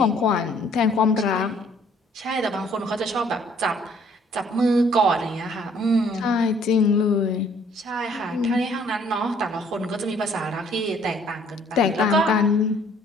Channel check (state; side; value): normal; both; correlation 0.60